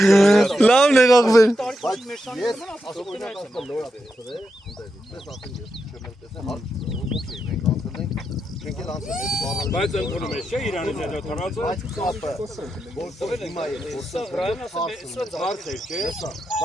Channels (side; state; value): both; normal; correlation 0.86